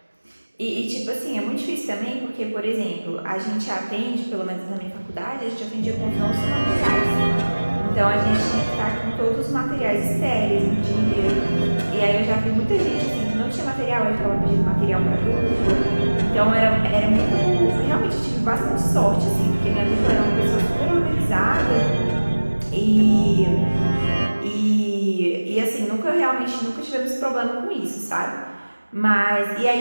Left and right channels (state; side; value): inverted; both; correlation -1.00